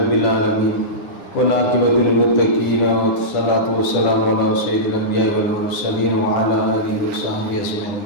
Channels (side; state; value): right; late; 9.6 ms